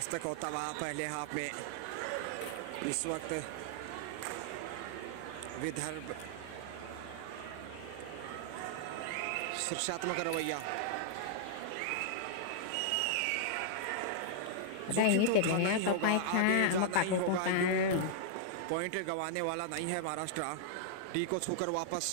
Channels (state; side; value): different; both; correlation -0.01